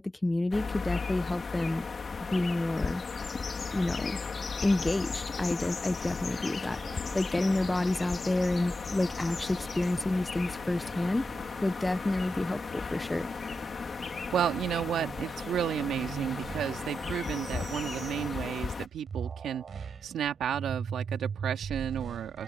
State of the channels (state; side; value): normal; both; correlation 0.88